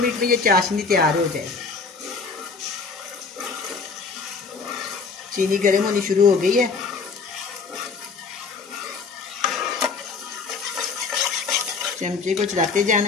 में ये चाशनी तैयार हो जाए। चीनी गर्म होनी शुरू हो गई है। चमचे को चलाते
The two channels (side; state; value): right; quieter; 4.7 dB